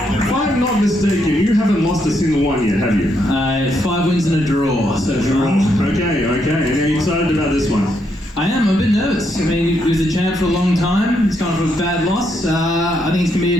If I'm not mistaken, you haven't lost a single one yet, have you? 5 wins and a draw, so draw. Okay. And are you excited about this one? I am, I'm a bit nervous. I mean, he was a champ for a long time. He's gone for a bad loss. I think it's going to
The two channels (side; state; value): both; normal; correlation 0.77